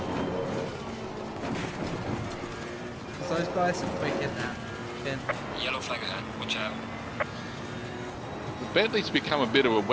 those guys are quick in that. Ben. Yellow flag ahead. Watch out. The Bentley's become a bit of a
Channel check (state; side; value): identical; both; correlation 1.00